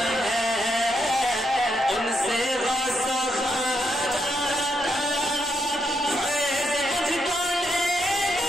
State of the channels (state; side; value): normal; both; correlation 0.80